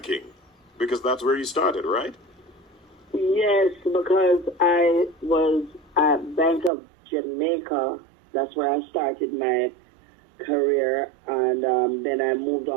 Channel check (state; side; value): drops out; left; at 6.7 s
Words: Because that's where you started, right? Yes, because I was at Bank of Jamaica. That's where I started my career, and then I moved